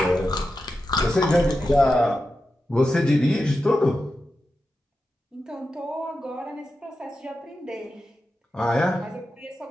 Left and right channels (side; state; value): both; normal; correlation 0.90